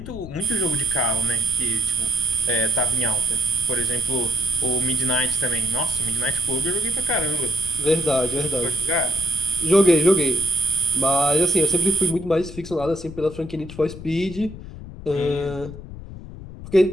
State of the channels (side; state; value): left; noise; rumble, 13 dB below the sound